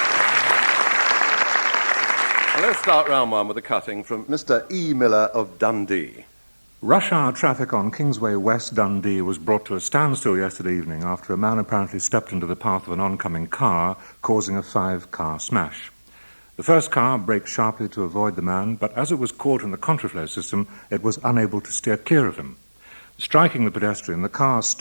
Let's start round one with a cutting from Mr. E. Miller of Dundee. Rush hour traffic on Kingsway West Dundee was brought to a standstill yesterday evening after a man apparently stepped into the path of an oncoming car, causing a 5-car smash. The first car braked sharply to avoid the man, but as it was caught in the contraflow system, it was unable to steer clear of him. Striking the pedestrian, the car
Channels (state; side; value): inverted; both; correlation -1.00